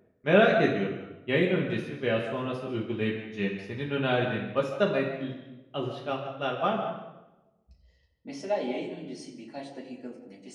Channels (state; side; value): identical; both; correlation 1.00